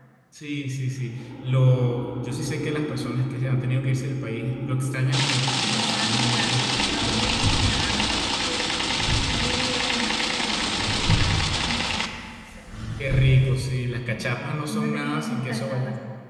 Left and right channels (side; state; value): both; identical; correlation 1.00